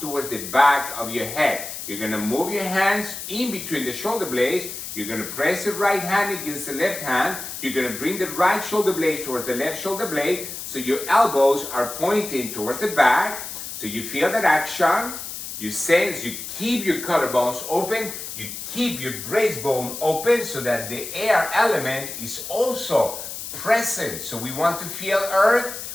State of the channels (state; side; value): noise; left; hiss, 8 dB below the sound